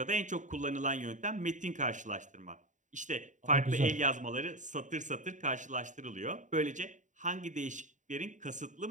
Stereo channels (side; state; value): left; late; 0.36 ms